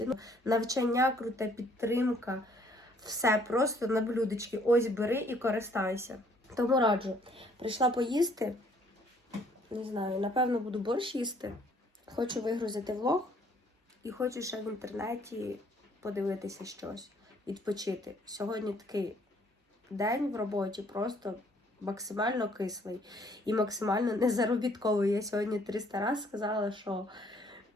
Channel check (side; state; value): both; normal; correlation 0.63